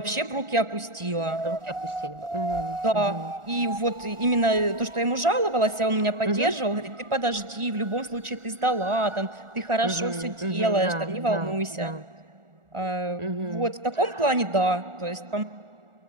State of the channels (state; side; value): late; left; 1.4 ms